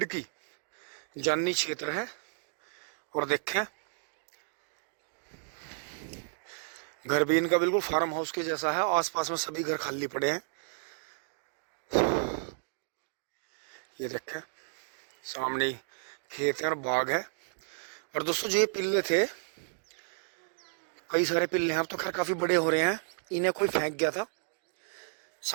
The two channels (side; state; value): left; silent; digital silence